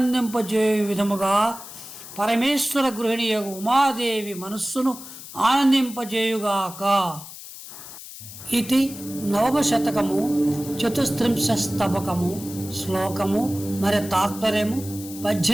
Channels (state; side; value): noise; left; hiss, 14 dB below the sound